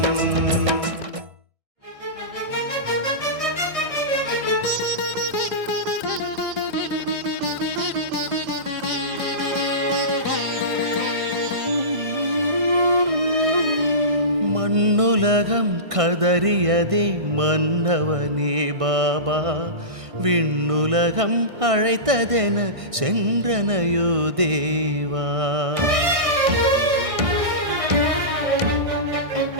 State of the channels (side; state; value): left; late; 1.6 ms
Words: மண்ணுலகம் கதறியதே மன்னவனே பாபா, விண்ணுலகம் அழைத்ததென சென்றனையோ தேவா.